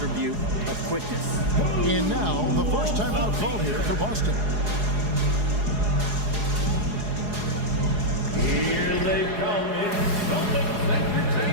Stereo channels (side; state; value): left; late; 4.8 ms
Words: of quickness. And now, the first timeout called here for Boston. Here they come in Celtics